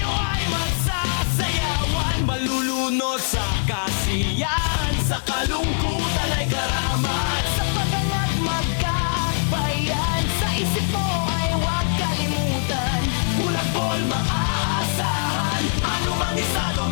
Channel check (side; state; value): right; silent; digital silence